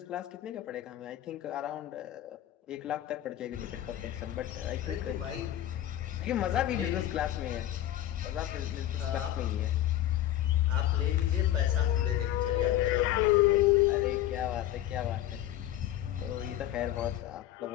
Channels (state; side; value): quieter; right; 12.8 dB